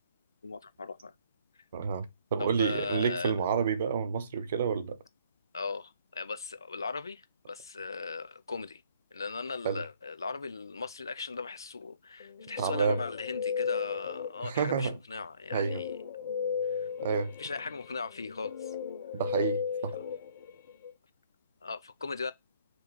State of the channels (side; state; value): both; inverted; correlation -0.62